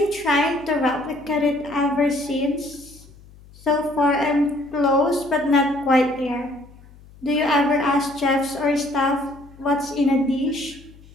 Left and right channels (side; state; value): left; noise; hum, 23 dB below the sound